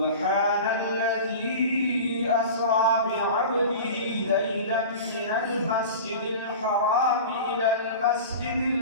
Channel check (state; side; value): inverted; both; correlation -0.34